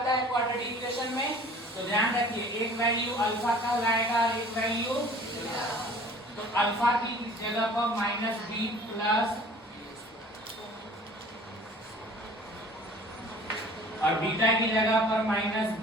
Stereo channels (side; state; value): both; normal; correlation 0.48